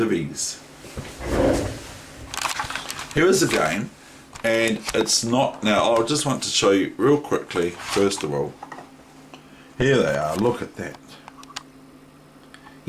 Here is a game, and it's not, now I just want to show you real quickly, first of all, here they are, look at that.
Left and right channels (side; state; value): both; identical; correlation 1.00